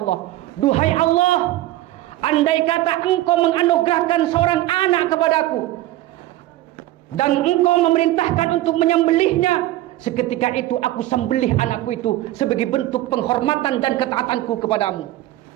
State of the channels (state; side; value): quieter; left; 15.8 dB